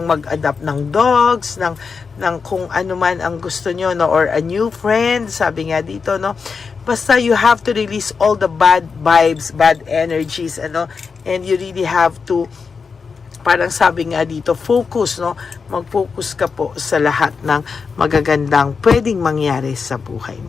mag-adapt ng dogs, ng kung ano man ang gusto nyo, no? Or a new friend, sabi nga dito, no? Basta you have to release all the bad vibes, bad energies, and you really have to, parang sabi nga dito, focus, no? Mag-focus ka po sa lahat ng magagandang pwedeng mangyari sa buhay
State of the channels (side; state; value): right; quieter; 5.3 dB